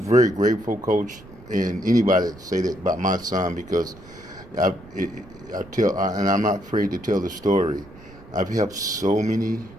grateful, Coach, and anybody that say that about my son, because and I'm not afraid to tell the story. I've helped so many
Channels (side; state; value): right; noise; rumble, 21 dB below the sound